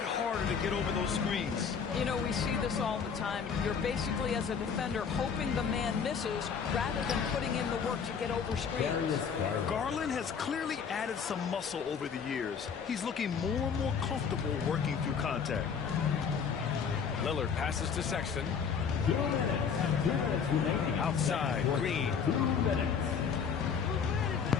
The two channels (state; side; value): quieter; right; 6.5 dB